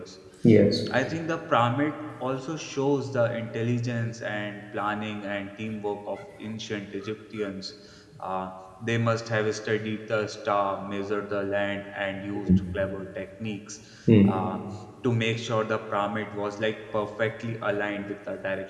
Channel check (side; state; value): both; identical; correlation 1.00